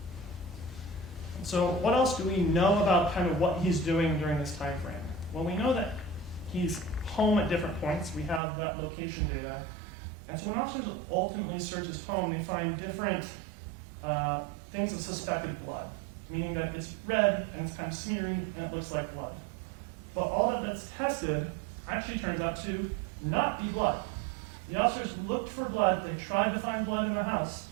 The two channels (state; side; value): drops out; left; at 8.4 s